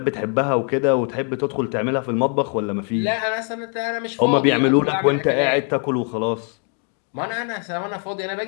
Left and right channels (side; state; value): right; quieter; 39.6 dB